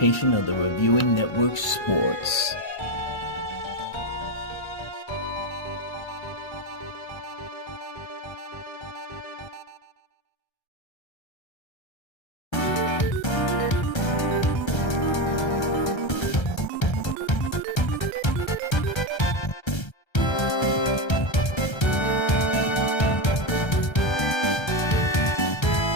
of the Reviewing Network Sports.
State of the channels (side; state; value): right; late; 1.3 ms